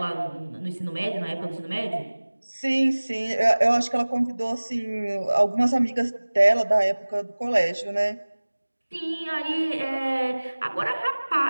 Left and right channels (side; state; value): both; inverted; correlation -1.00